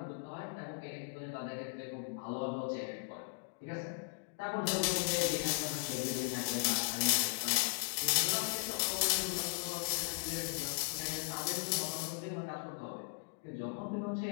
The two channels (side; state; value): right; quieter; 39.5 dB